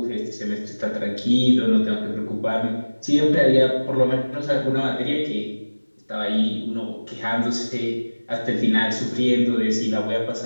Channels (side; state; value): both; inverted; correlation -1.00